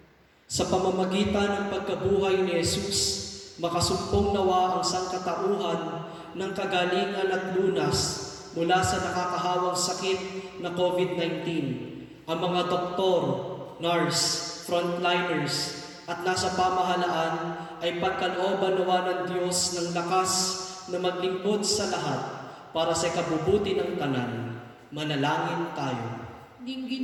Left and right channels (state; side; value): identical; both; correlation 1.00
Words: Sa pamamagitan ng pagkabuhay ni Jesus, makasumpong nawa ang sangkatauhan ng kagalingan at lunas mula sa nakakahawang sakit na COVID-19. Ang mga doktor, nurse, frontliners, at nasa pamahalaan ay pagkalooban nawa ng Diyos ng lakas na maglingkod sa lahat para sa kabubuti ng tanan. Manalangin tayo.